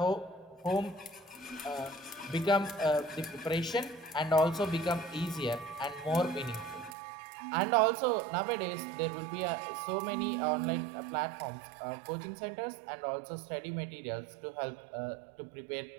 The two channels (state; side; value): drops out; left; at 7.0 s